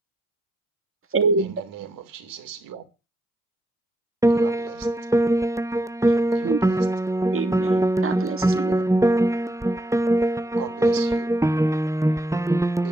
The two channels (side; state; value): both; normal; correlation 0.79